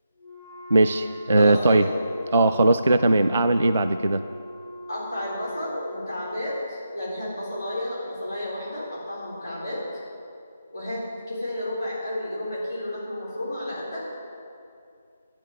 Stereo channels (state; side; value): inverted; both; correlation -0.84